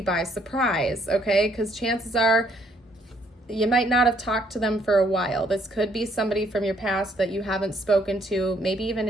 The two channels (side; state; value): both; normal; correlation 0.67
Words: by surprise, okay? Because chances are you might not have talked to them for a while. This could be somebody from your past that you haven't spoken to, maybe even